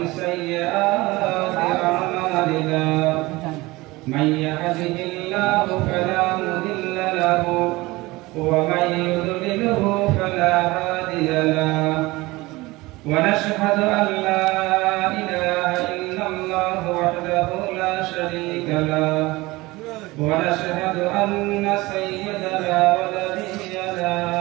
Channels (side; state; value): left; quieter; 20.9 dB